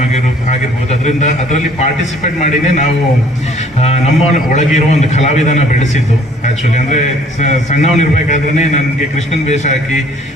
ಆಗಿರ್ಬೋದು, ಅದರಲ್ಲಿ ಪಾರ್ಟಿಸಿಪೇಟ್ ಮಾಡಿನೇ ನಾವು ನಮ್ಮ ಒಳಗಿರೋ ಒಂದು ಕಲಾವಿದನ ಬೆಳೆಸಿದ್ದು. ಆ್ಯಕ್ಚುಲಿ ಅಂದರೆ ಸಣ್ಣವನಿರ್ಬೇಕಾದ್ರೆ ನನಗೆ ಕೃಷ್ಣನ್ ವೇಷ ಹಾಕಿ,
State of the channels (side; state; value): both; normal; correlation 0.58